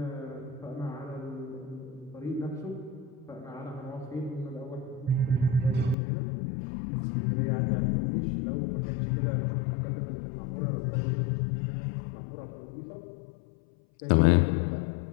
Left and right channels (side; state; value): right; drops out; at 6.0 s